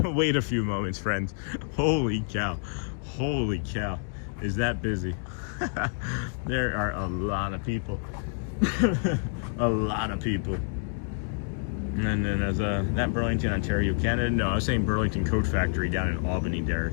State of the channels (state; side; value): silent; right; 59 dB below the other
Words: wait a few moments, friends. Holy cow, is that busy? There are a lot of people. A lot of people. And then there's that Burlington, Ontario, Canada. No, I was saying Burlington Coat Factory down in Albany,